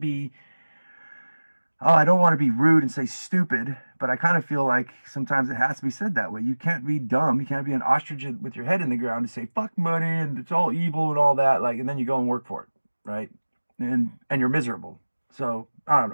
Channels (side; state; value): both; inverted; correlation -1.00